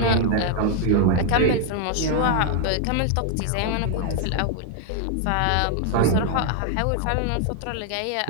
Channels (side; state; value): both; different; correlation 0.00